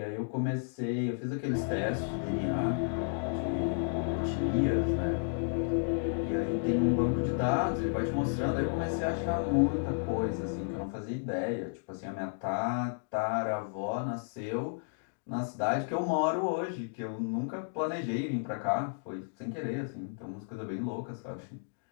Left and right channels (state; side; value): silent; right; digital silence